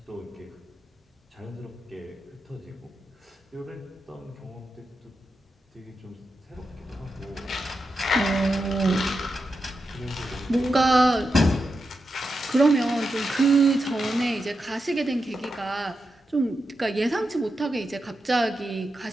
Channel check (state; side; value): normal; both; correlation 0.88